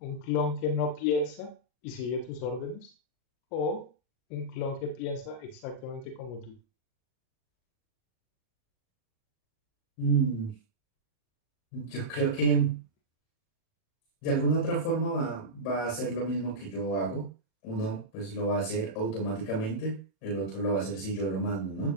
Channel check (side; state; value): right; late; 38 ms